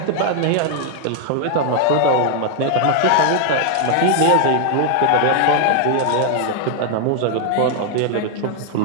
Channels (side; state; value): both; different; correlation 0.00